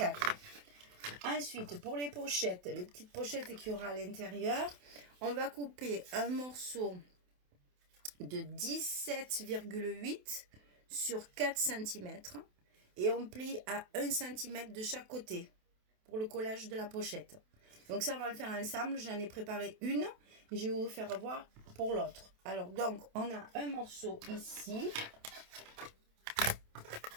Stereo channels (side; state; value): left; late; 28 ms